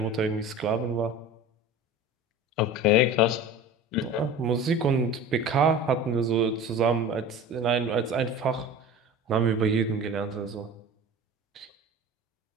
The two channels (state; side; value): normal; both; correlation 0.37